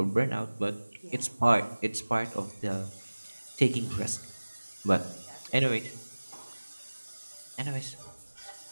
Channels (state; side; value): inverted; both; correlation -1.00